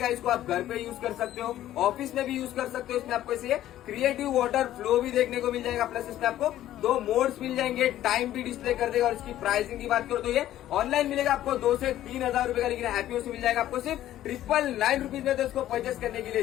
इसको आप घर पे यूज कर सकते हो, ऑफिस में भी यूज कर सकते हो। इसमें आपको इसे क्रिएटिव वाटर फ्लो भी देखने को मिल जाएगा, प्लस इसमें आपको 2 मोड्स मिल जाएंगे, टाइम भी डिस्प्ले कर देगा। और इसकी प्राइसिंग की बात करो तो ये ऑनलाइन मिलेगा आपको 2 से 3 हजार रुपए का, लेकिन हैप्पी होम्स से मिल जाएगा आपको सिर्फ 999 रुपीज में। तो इसको परचेस करने के लिए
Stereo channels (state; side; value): quieter; right; 13.1 dB